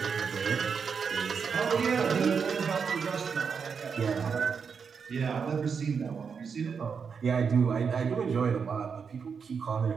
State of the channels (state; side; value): quieter; left; 6.1 dB